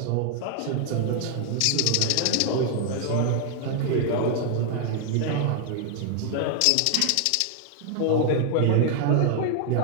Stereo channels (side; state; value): both; different; correlation 0.00